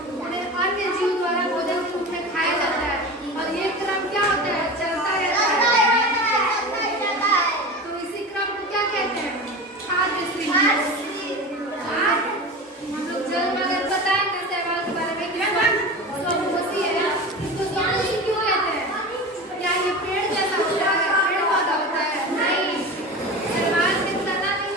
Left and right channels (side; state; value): both; normal; correlation 0.30